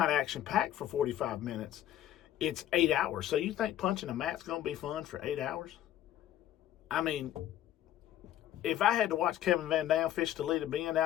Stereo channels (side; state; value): right; quieter; 12.3 dB